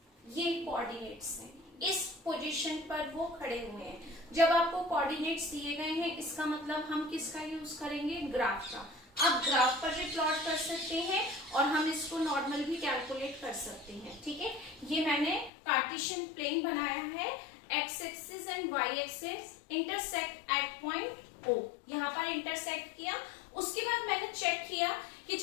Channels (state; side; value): drops out; right; at 15.5 s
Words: ये coordinates हैं, इस position पर वो खड़े हुए हैं. जब आपको कोऑर्डिनेट्स दिए गए हैं इसका मतलब हम किसका यूज करेंगे, ग्राफ का. आप ग्राफ पर भी प्लॉट कर सकते हैं और हम इसको नॉर्मल भी कैलकुलेट कर सकते हैं. ठीक है, ये मैंने कार्टेशियन प्लेन बनाया है. X axis and Y axis intersect at point O. यहाँ पर इंटरसेक्ट किया. उसके बाद मैंने चेक किया कि